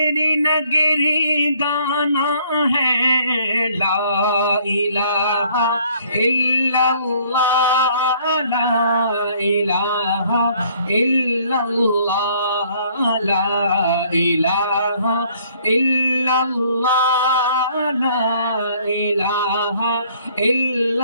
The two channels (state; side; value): inverted; both; correlation -0.60